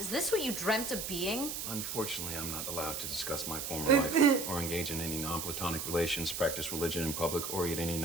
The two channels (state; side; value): noise; right; hiss, 4 dB below the sound